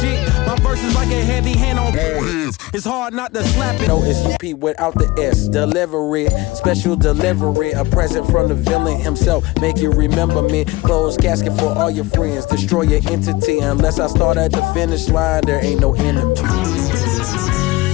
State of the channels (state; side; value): quieter; right; 20.7 dB